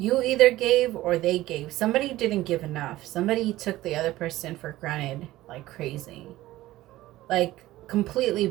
either gave or they gave. Somebody didn't give enough. Somebody took the other person for granted like crazy. Like, completely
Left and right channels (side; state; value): left; quieter; 16.3 dB